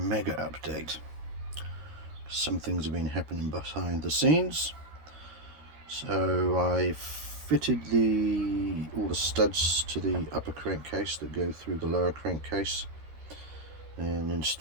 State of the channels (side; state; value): left; late; 13 ms